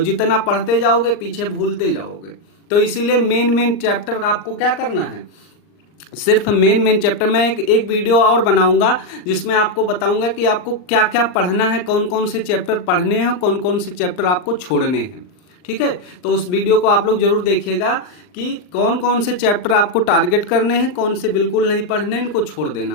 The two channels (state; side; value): late; right; 39 ms